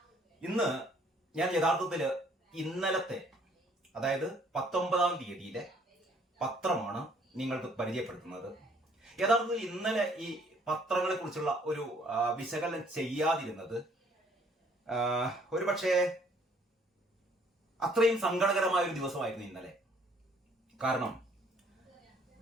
ഇന്ന് ഞാൻ യഥാർത്ഥത്തിൽ ഇന്നലത്തെ, അതായത് 19-ാം തീയതിയിലെ പത്രമാണ് നിങ്ങൾക്ക് പരിചയപ്പെടുത്തുന്നത്. യഥാർത്ഥത്തിൽ ഇന്നലെ ഈ പത്രങ്ങളെ കുറിച്ചുള്ള ഒരു വിശകലനം ചെയ്യാതിരുന്നത് ഒരുപക്ഷെ അത്രയും സങ്കടകരമായ ഒരു ദിവസമായിരുന്നു ഇന്നലെ. കാരണം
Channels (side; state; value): both; normal; correlation 0.61